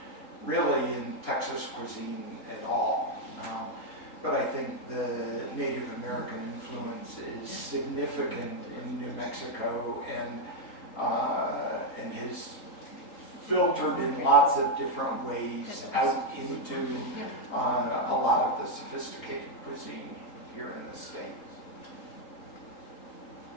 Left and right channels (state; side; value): late; right; 3.8 ms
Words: really in Texas cuisine at all. But I think the Native American influence is significant in New Mexico and has filtered in lots of different ways out into a lot of the sophisticated cuisine here in the States.